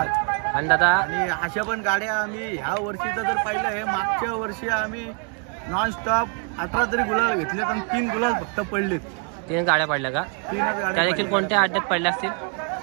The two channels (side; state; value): left; quieter; 39.2 dB